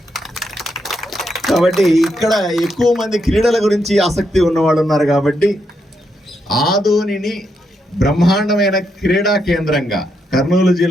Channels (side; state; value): both; normal; correlation 0.80